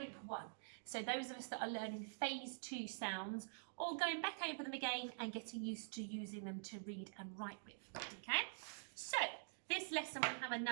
1. So those of us that are learning phase 2 sounds or going back over them again and getting used to using them to read and write with. Okay, so this lesson we have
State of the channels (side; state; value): left; silent; digital silence